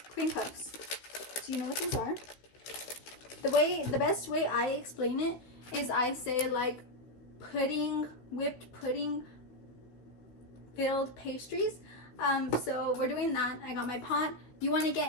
cream puffs. Do you know what these are? The best way I explain it is I say like pudding, whipped pudding filled pastries. So we're doing that. I got my pot. You want to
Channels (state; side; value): late; right; 15 ms